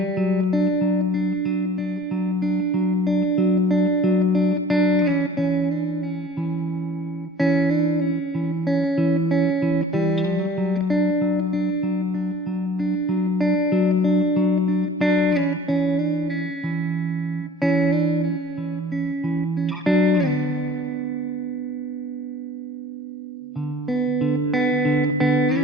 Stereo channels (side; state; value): both; normal; correlation 0.49